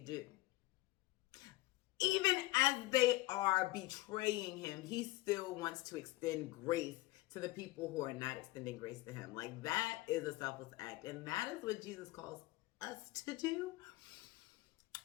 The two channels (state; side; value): quieter; right; 18.8 dB